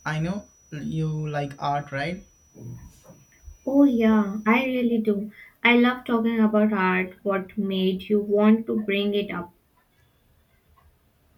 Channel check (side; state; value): both; identical; correlation 1.00